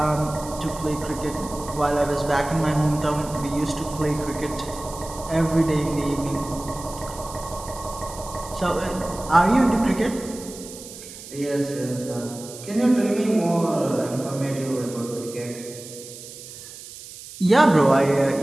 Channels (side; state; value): right; noise; hiss, 15 dB below the sound